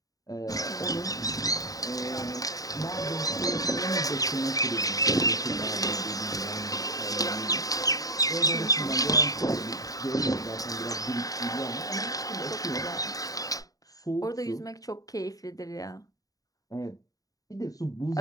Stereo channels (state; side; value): late; right; 0.17 ms